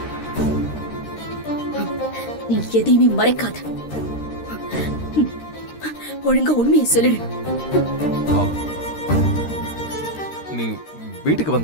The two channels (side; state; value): right; late; 13 ms